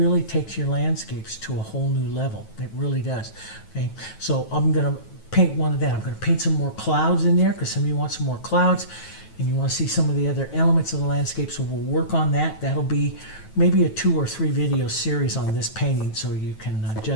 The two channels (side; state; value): right; late; 9.2 ms